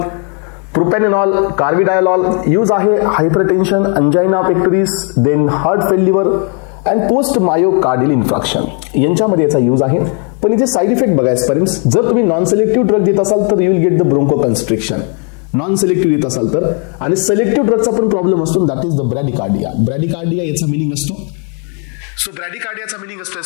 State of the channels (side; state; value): right; quieter; 39.9 dB